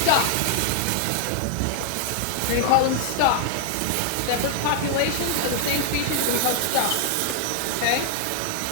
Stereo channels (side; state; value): both; different; correlation -0.01